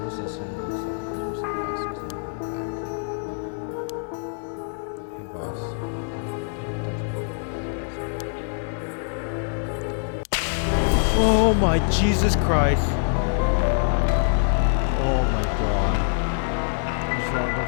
Once instant, it looks like it comes to pass. It's not going back. Hey boss, I think that's what it does. Oh my Jesus Christ! Oh my god. What's wrong? Don't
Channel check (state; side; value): silent; right; digital silence